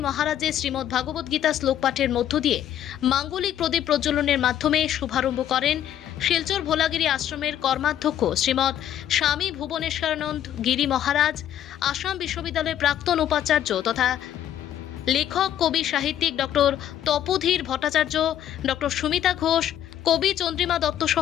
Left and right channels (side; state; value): right; quieter; 10.9 dB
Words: মহারাজের শ্রীমৎ ভাগবত গীতা শ্লোক পাঠের মধ্য দিয়ে মাঙ্গলিক প্রদীপ প্রজ্বলনের মাধ্যমে শুভারম্ভ করেন শিলচর ভোলাগিরি আশ্রমের কর্মাধ্যক্ষ শ্রীমৎ স্বামী ভুবনেশ্বরানন্দ গিরি মহারাজ, আসাম বিশ্ববিদ্যালয়ের প্রাক্তন উপাচার্য তথা লেখক কবি সাহিত্যিক ডক্টর তপোধীর ভট্টাচার্য, ডক্টর সুমিতা ঘোষ, কবি চন্দ্রিমা দত্ত